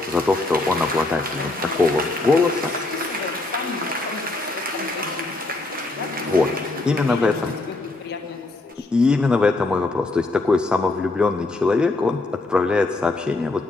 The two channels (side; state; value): right; quieter; 3.1 dB